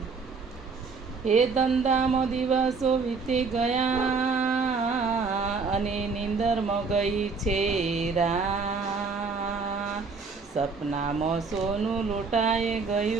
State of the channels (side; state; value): left; quieter; 4.7 dB